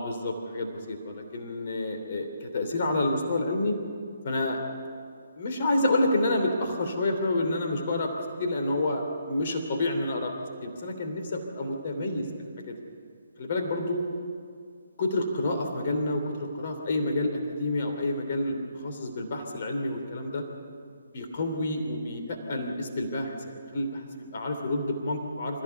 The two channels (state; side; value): inverted; both; correlation -0.75